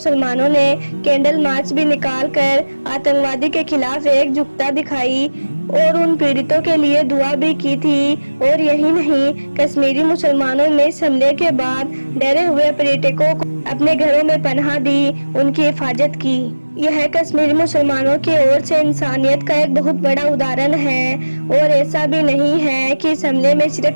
ने कैंडल मार्च भी निकाल कर आतंकवादी के खिलाफ एकजुटता दिखाई और उन पीड़ितों के लिए दुआ भी की थी। और यही नहीं, कश्मीरी मुसलमानों ने इस हमले के बाद डरे हुए पर्यटकों को अपने घरों में पनाह दी, उनकी हिफाजत की। यह कश्मीरी मुसलमानों की ओर से इंसानियत का एक बहुत बड़ा उदाहरण है। और ऐसा भी नहीं है कि इस हमले में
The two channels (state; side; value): inverted; both; correlation -1.00